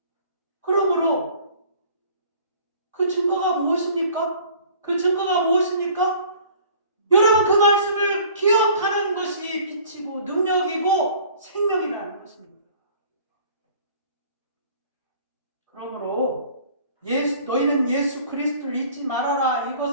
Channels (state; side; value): inverted; both; correlation -0.51